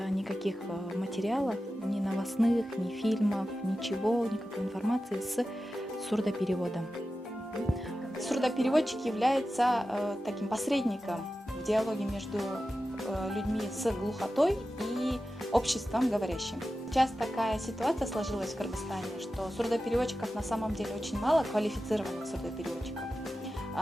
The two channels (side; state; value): both; normal; correlation 0.93